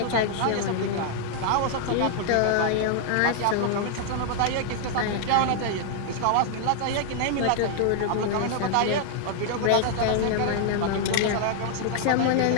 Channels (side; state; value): both; different; correlation 0.00